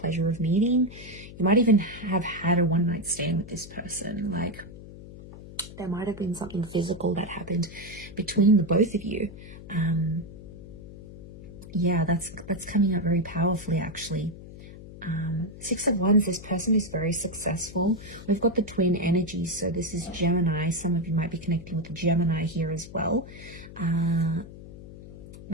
of meeting. You might even have had a one-night stand with this person. Like, there might have been something physical that happened between the both of you. Yeah, that's coming up very powerfully, actually. 6 of Wands, this person is very successful. We've got the twin energy, so this is Gemini. Some of you might be connecting with the Gemini here as well.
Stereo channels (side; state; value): left; noise; hum, 15 dB below the sound